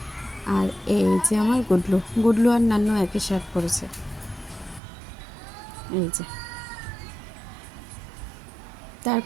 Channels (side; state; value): left; drops out; at 4.8 s